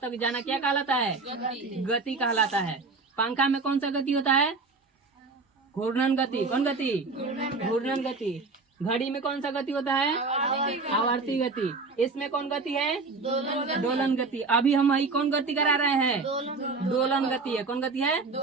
जाना क्या कहलाता है, गति कहलाता है। पंखा में कौन सा गति होता है, घूर्णन गति। कौन गति, घूर्णन गति। घड़ी में कौन सा गति होता है, आवर्ती गति। इसमें कौन गति है, दोलन गति। अभी हम वही कौन गति करा रहे हैं, दोलन गति है। कौन गति है,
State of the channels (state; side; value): quieter; left; 4.0 dB